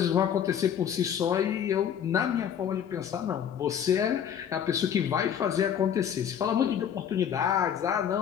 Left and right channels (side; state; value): right; quieter; 8.8 dB